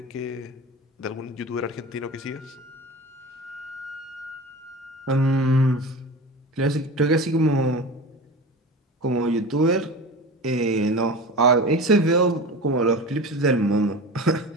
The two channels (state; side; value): normal; both; correlation 0.31